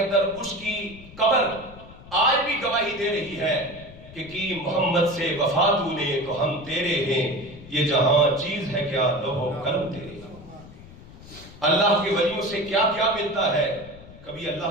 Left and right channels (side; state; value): left; noise; rumble, 18 dB below the sound